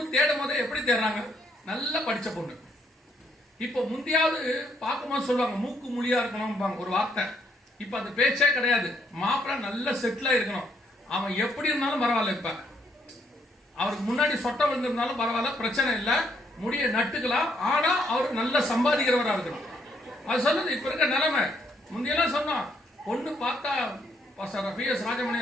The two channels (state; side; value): normal; both; correlation 0.71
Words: தேடும் போதே எப்படி தேடுறாங்க, நல்லா படிச்ச பொண்ணு. இப்ப முந்தியாவது பார்க்கும்போது சொல்லுவாங்க மூக்கு மொழியா இருக்கணும் ஒரு வார்த்தை. இப்ப அந்த பேச்சே கிடையாது. மாப்பிள்ளை நல்ல செட்டிலா இருக்கணும். அவன் எப்படி இருந்தாலும் பரவாயில்ல, இப்ப அவருக்கு முன்னாடி சொட்ட விழுந்திருந்தாலும் பரவாயில்ல, பிரச்சனை இல்லை, முடிய நட்டுக்கலாம். ஆனா அவர் நல்ல சம்பாதிக்கிறவரா இருக்கணும். அது சொல்லுது இப்ப இருக்க நிலைமை. முந்தையெல்லாம் சொன்னோம், பொண்ணு பார்த்தா PS ராஜமணி